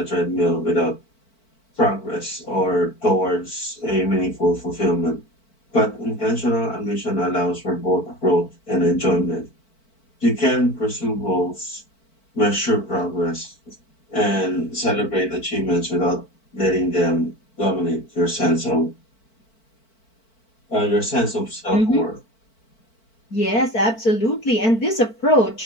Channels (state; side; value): late; right; 4.5 ms